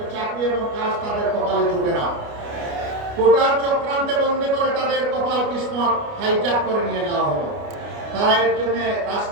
চাকরি এবং কাজ তাদের কপালে জুটে না। কোটার চক্রান্তে বন্দী করে তাদের কপাল কিসমত হাইজ্যাক করে নিয়ে যাওয়া হলো। তারা এর জন্য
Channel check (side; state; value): left; late; 29 ms